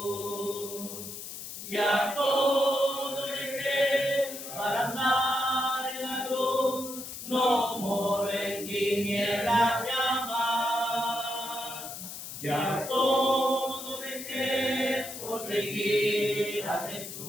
y a todo dejé para andar no moro en tinieblas llamas. Ya todo dejé por seguir a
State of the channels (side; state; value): left; noise; hiss, 9 dB below the sound